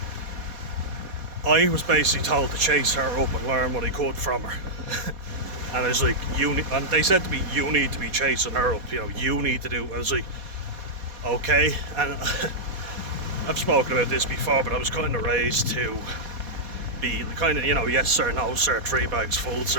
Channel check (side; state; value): left; late; 4.2 ms